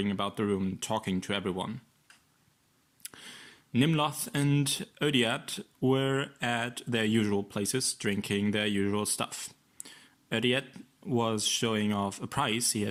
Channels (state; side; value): identical; both; correlation 1.00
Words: about the room, talking to everyone. Nimloth and Odiat were at their usual places, drinking their usual stuff. Odiat was showing off a prize he